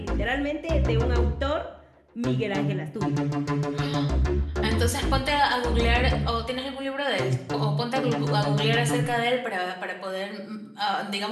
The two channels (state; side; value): identical; both; correlation 1.00